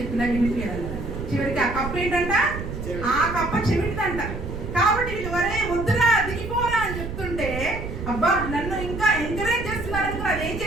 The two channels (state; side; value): noise; right; rumble, 7 dB below the sound